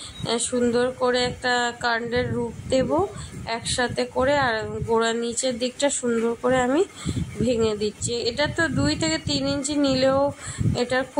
সুন্দর করে একটা কাণ্ডের রূপ দেব একসাথে করে। আর গোড়ার নিচের দিকটা সুন্দর করে আমি ভেঙে দিচ্ছি। এটা তো 2 থেকে 3 ইঞ্চি নিলেও এটা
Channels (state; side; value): identical; both; correlation 1.00